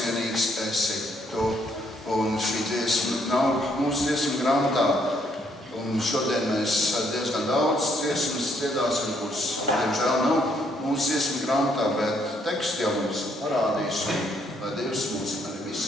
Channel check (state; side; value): normal; both; correlation 0.70